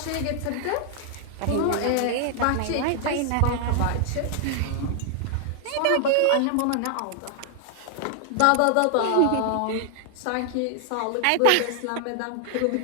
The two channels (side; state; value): both; different; correlation 0.00